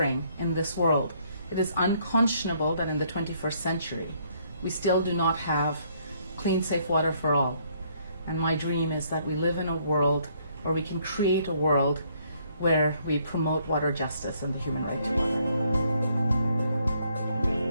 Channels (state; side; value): inverted; both; correlation -0.68